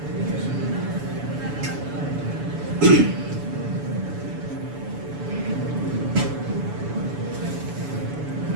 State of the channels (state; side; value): late; left; 7.0 ms